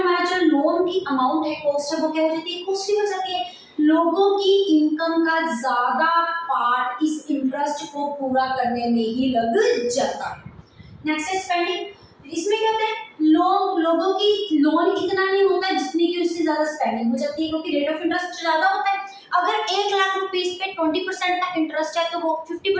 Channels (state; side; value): identical; both; correlation 1.00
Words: हमारा जो लोन की अमाउंट है, कॉस्ट है, वो क्या हो जाती है, कॉस्टली हो जाती है। लोगों की इनकम का ज्यादा पार्ट इस इंटरेस्ट को पूरा करने में ही लग जाता है। नेक्स्ट है स्पेंडिंग। इसमें क्या होता है, लोगों की लोन इतना नहीं होता है जितनी की उससे ज्यादा स्पेंडिंग हो जाती है, क्योंकि रेट ऑफ इंटरेस्ट ज्यादा होता है। अगर 1,00,000 रुपीज पे 20% का इंटरेस्ट है तो वो